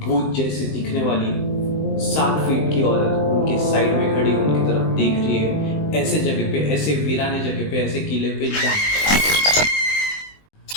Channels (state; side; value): late; right; 20 ms